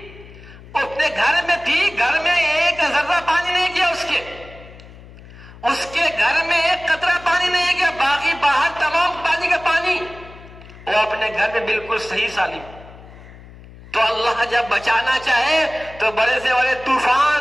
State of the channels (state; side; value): noise; left; hum, 19 dB below the sound